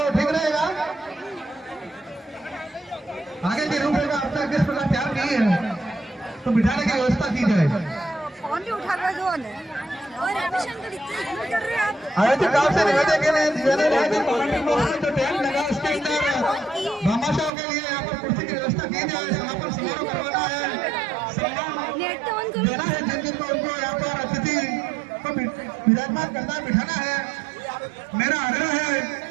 ठीक रहेगा। आगे की रूपरेखा आपने किस प्रकार तैयार की है तो बिठाने की व्यवस्था की जाए। फोन भी उठा कर दो और एडमिशन कर कर रहे हैं आप। आयोजक गाँव से निवेदन के लिए जो टेंट लगा उसके अंदर भामाशाह के लिए यहाँ पर कुर्सी की व्यवस्था की जाए। समापन समारोह करवाना है, सम्मान देना है जिन जिनको उनको यहाँ पर अतिथि को विराजमान करना बिठाना है। मेरा आग्रह है,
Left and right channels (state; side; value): drops out; left; at 17.5 s